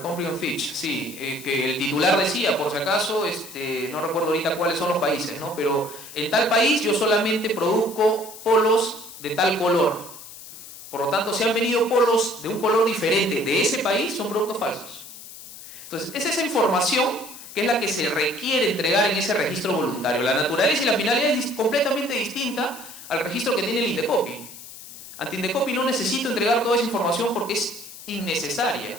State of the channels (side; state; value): left; noise; hiss, 15 dB below the sound